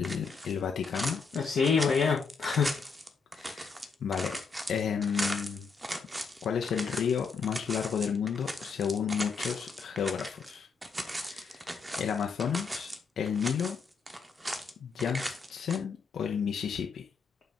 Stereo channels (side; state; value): right; quieter; 5.2 dB